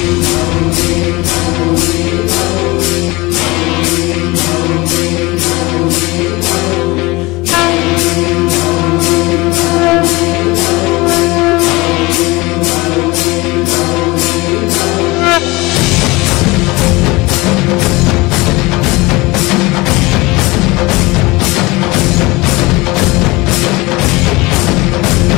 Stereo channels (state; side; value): quieter; right; 22.8 dB